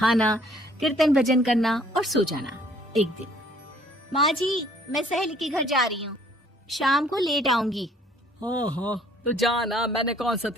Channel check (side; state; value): both; normal; correlation 0.59